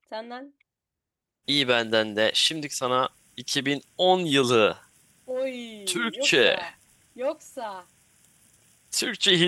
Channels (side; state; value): both; identical; correlation 1.00